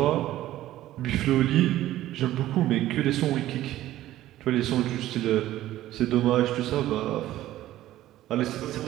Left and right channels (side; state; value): left; quieter; 14.4 dB